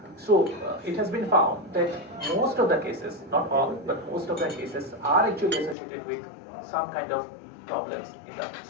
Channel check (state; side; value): drops out; right; at 5.8 s